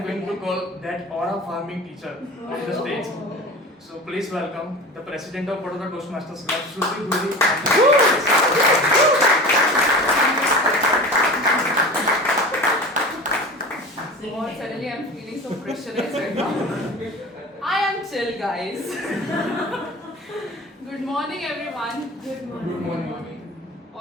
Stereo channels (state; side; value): normal; both; correlation 0.34